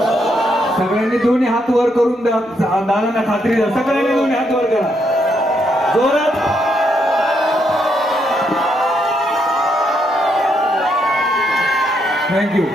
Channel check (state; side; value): normal; both; correlation 0.77